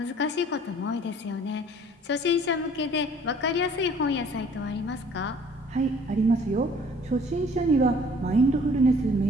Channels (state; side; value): normal; both; correlation 0.54